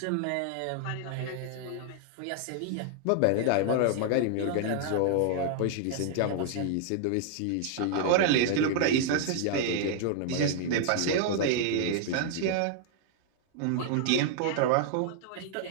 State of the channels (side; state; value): both; different; correlation 0.00